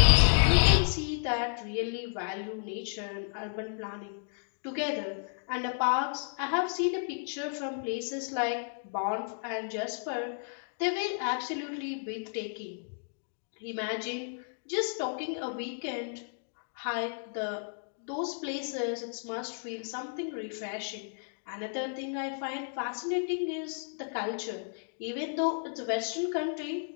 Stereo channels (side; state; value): right; silent; digital silence